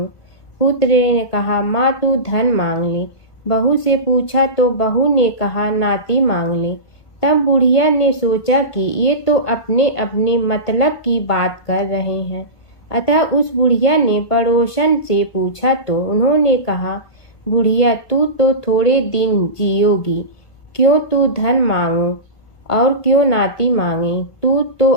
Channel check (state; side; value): late; right; 1.7 ms